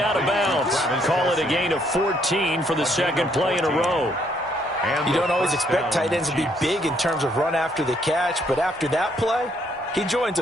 of bounds. Call it a gain of 14 for the second play in a row. You don't always expect tight ends to be big in terms of run after the catch, but after that play, he joins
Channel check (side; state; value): both; normal; correlation 0.70